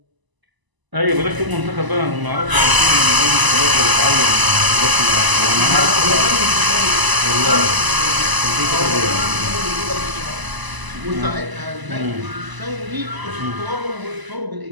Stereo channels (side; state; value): left; late; 1.0 ms